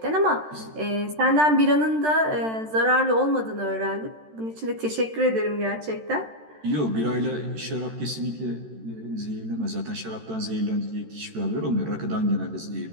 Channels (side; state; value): left; late; 13 ms